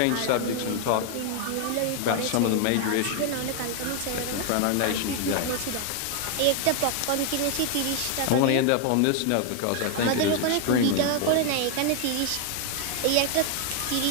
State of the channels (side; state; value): both; different; correlation 0.00